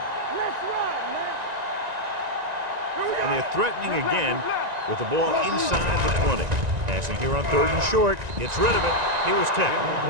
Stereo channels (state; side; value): late; left; 1.9 ms